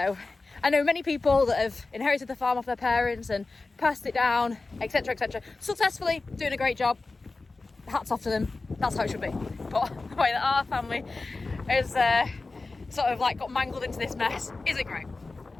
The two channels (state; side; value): quieter; right; 3.6 dB